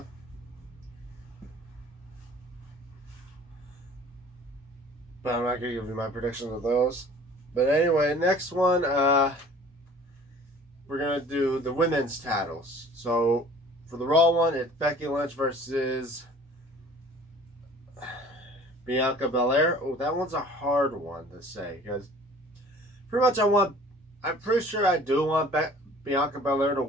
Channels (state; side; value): normal; both; correlation 0.49